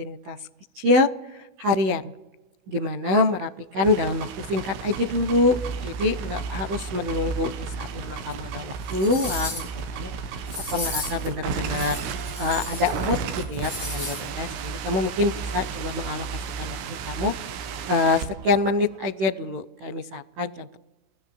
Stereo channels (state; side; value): late; left; 16 ms